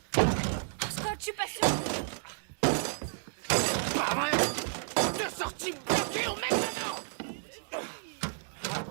Scott, je suis pas sûre. Pas vrai. Deux sorties bloquées au mec dedans.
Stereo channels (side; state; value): left; silent; digital silence